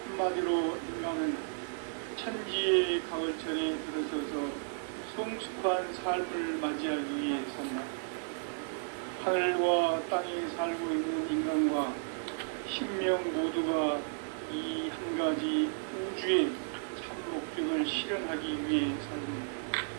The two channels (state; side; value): silent; left; 55 dB below the other